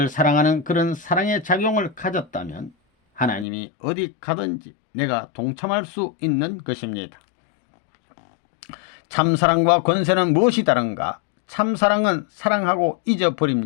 사랑하는 그런 사랑의 작용을 가졌다면 하나님이 어디 가든지 내가 동참할 수 있는 것입니다. 참사랑과 권세는 무엇이 다른가? 참사랑은 사랑하고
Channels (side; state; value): right; drops out; at 3.5 s